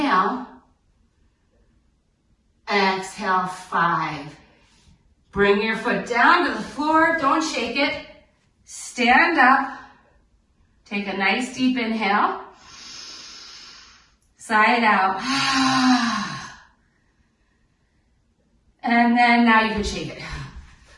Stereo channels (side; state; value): both; identical; correlation 1.00